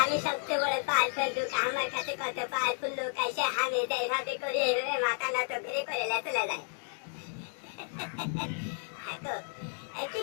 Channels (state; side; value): silent; right; 56 dB below the other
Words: আমি সবচেয়ে বড় পাওয়ারফুল লোক, আমার কাছে কত পাওয়ারফুল লোক আসে, আমি যেভাবে করি এইভাবে মাথা নত করে চলে যায়। কি